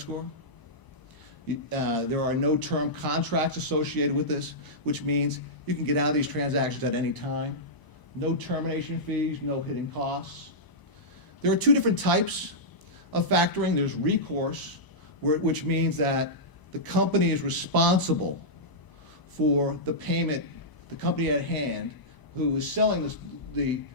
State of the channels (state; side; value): late; right; 1.0 ms